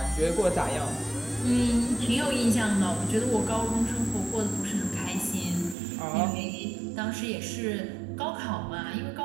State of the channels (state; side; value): drops out; left; at 5.8 s